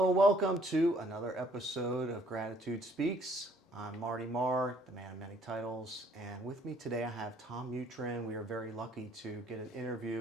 and welcome to another episode of Gratitude Speaks. I'm Marty Marr, the man of many titles, and with me today I have Tom Mutryn. We are very lucky to get an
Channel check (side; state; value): both; normal; correlation 0.62